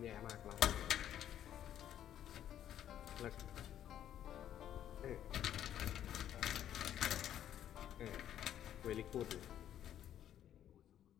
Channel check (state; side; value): quieter; right; 10.8 dB